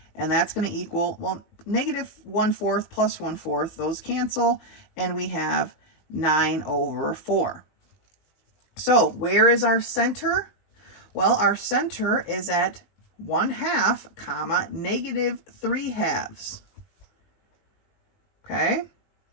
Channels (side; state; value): right; late; 20 ms